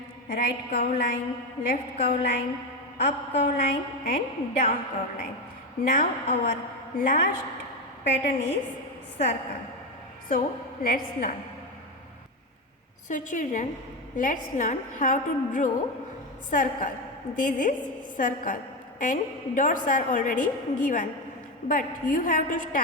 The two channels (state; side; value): normal; both; correlation 0.14